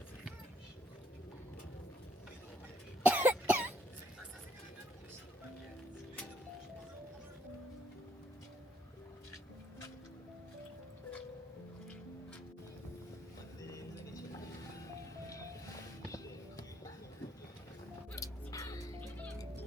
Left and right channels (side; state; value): both; normal; correlation 0.68